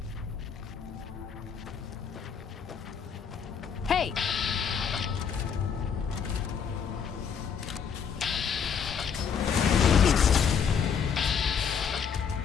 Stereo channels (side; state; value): right; quieter; 6.9 dB